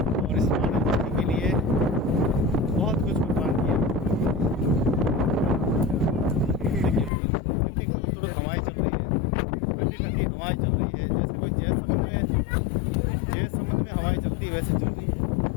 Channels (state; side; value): drops out; right; at 7.1 s